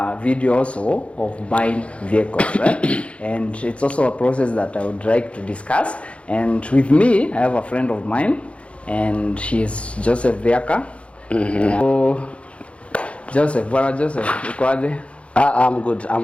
video also of buying vehicles, right? And it's also a process that I would like to discuss. And with me, I have a friend of mine, and she's Joseph Viaka. So Joseph, bwana Joseph, uko aje? I'm good,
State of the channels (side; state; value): right; late; 0.061 ms